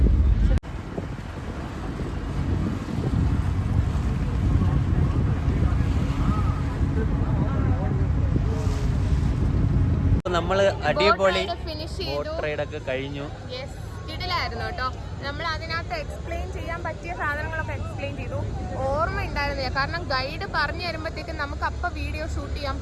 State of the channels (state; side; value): identical; both; correlation 1.00